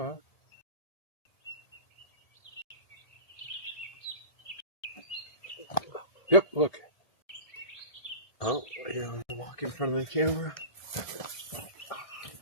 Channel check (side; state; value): right; late; 1.5 ms